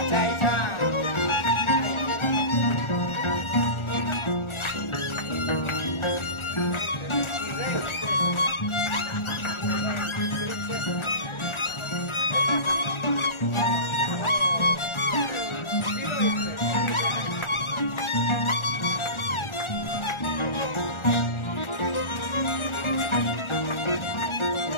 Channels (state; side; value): late; right; 1.4 ms